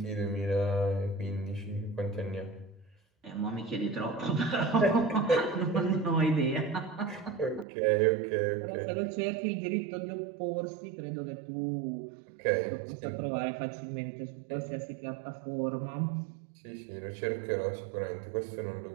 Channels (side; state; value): left; drops out; at 7.7 s